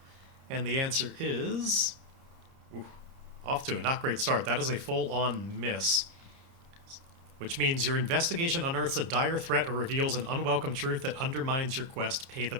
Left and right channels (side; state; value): left; late; 30 ms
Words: And the answer is... off to a not great start. That is a full-on miss. Which means your investigation unearths a dire threat or reveals an unwelcome truth that undermines your quest. Pay the